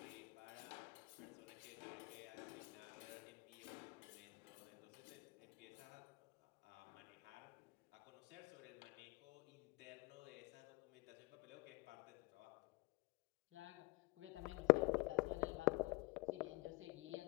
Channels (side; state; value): right; quieter; 24.2 dB